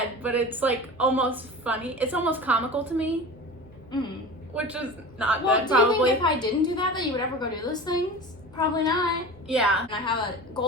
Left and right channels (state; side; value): noise; right; hum, 25 dB below the sound